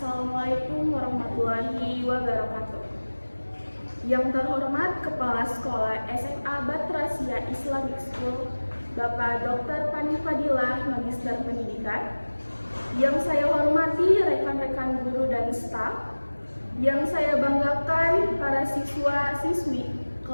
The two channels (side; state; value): both; inverted; correlation -1.00